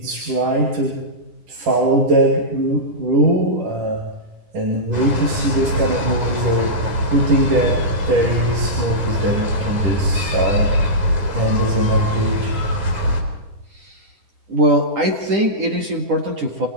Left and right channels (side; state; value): left; late; 10 ms